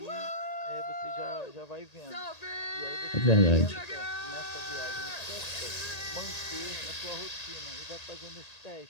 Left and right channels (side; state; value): right; late; 1.8 ms